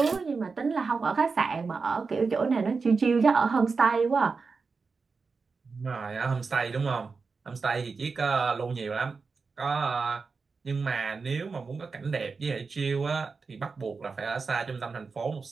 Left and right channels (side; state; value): left; quieter; 4.7 dB